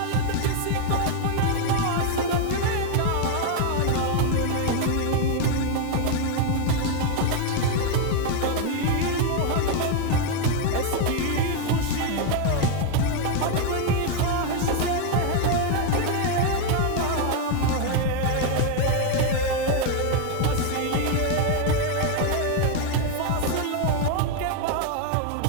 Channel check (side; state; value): both; different; correlation 0.01